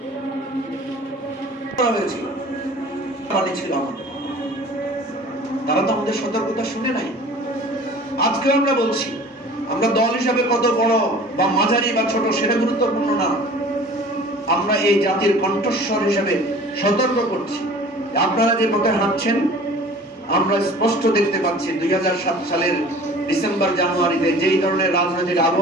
হয়েছিল ছিল আমাদের, তারা তো আমাদের সতর্কতা শুনে নাই। আজকে আমরা বলছি, আমরা দল হিসাবে কত বড় বা মাঝারি বা ছোট সেটা গুরুত্বপূর্ণ না, আমরা এই জাতির কণ্ঠস্বর হিসেবে সতর্ক করছি। আপনারা যে পথে হাঁটছেন আমরা স্পষ্ট দেখতে পাচ্ছি 2007 সালের ডিসেম্বর জানুয়ারিতে যেই ধরনের রাজনৈতিক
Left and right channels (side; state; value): both; normal; correlation 0.45